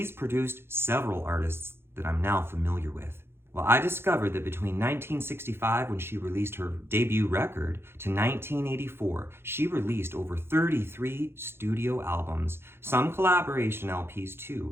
produced several artists that I'm now familiar with. Well, I discovered that between 1965, when she released her debut record, to 1984, she released over 33 studio albums, some collaboration LPs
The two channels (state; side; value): late; left; 0.11 ms